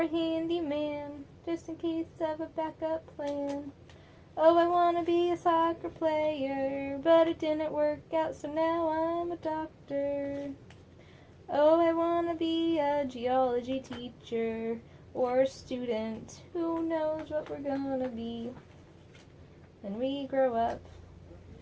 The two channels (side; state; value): both; identical; correlation 1.00